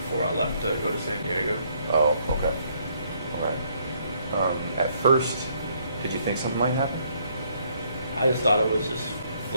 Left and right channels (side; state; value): both; inverted; correlation -0.68